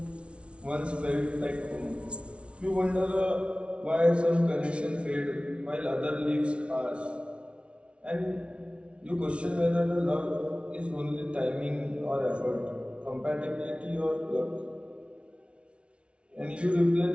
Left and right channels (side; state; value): left; late; 0.060 ms